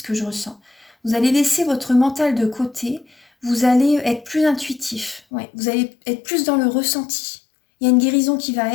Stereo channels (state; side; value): drops out; right; at 5.2 s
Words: que je ressens. Vous allez laisser votre mental de côté. Vous allez être plus intuitif. Ouais. Vous allez être plus dans le ressenti. Il y a une guérison qui va